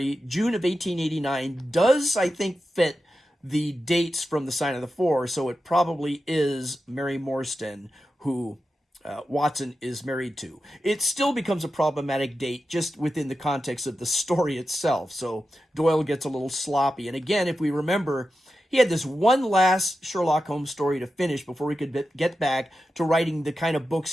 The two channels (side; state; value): both; normal; correlation 0.91